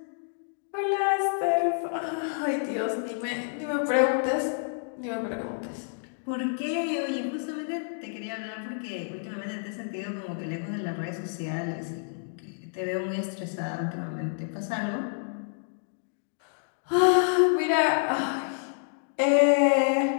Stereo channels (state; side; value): silent; right; digital silence